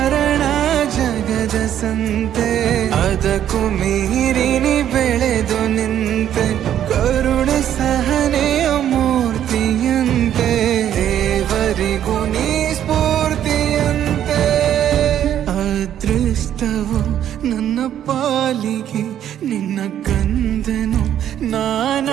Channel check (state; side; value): quieter; left; 10.5 dB